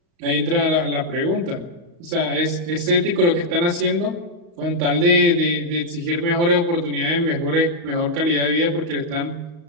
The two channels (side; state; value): left; late; 35 ms